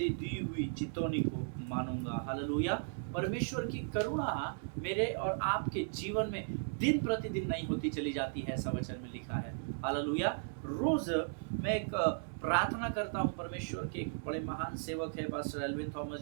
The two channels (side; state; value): left; silent; digital silence